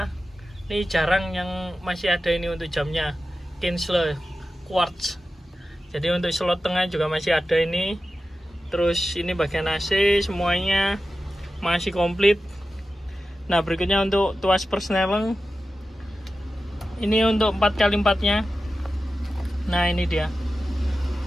Ini jarang yang masih ada ini untuk jamnya, Kinsler quartz. Jadi untuk slot tengah juga masih ada ini. Terus ini bagian AC semuanya masih komplit. Nah berikutnya untuk tuas persneleng. Ini untuk 4x4 nya. Nah ini dia.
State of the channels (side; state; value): both; normal; correlation 0.93